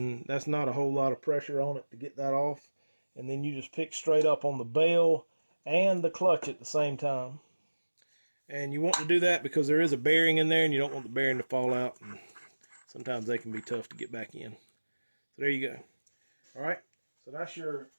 not a whole lot of pressure on it to get that off. And then you just pick straight up on the bell and the clutch at the same time. And you want to do that because there is a bearing in there and you don't want the bearing to fall out. And sometimes they can be tough to get back in. So there you go. All right, so that's your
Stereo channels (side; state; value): both; inverted; correlation -1.00